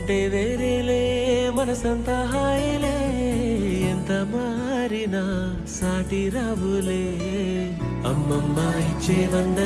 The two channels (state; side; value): identical; both; correlation 1.00